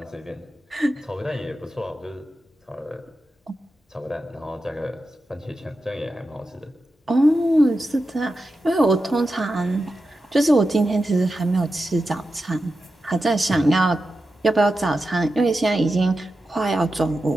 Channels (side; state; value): both; normal; correlation 0.91